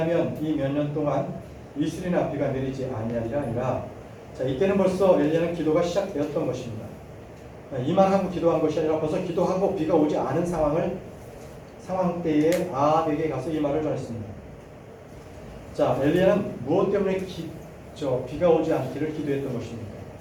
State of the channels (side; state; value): both; identical; correlation 1.00